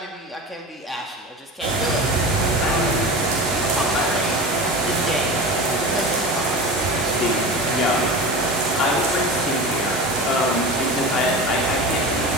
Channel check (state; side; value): normal; both; correlation 0.30